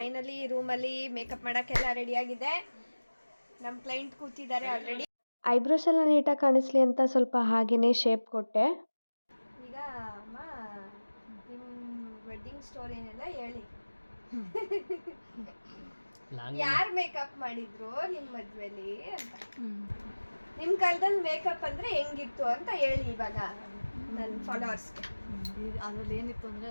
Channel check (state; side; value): inverted; both; correlation -1.00